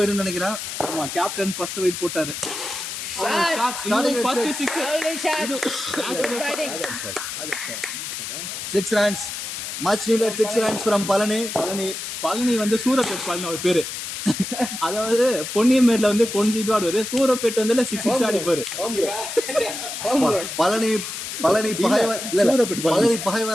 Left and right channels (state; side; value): noise; left; hiss, 6 dB below the sound